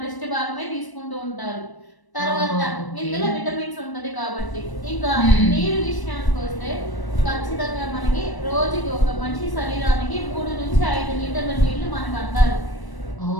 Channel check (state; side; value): late; right; 1.0 ms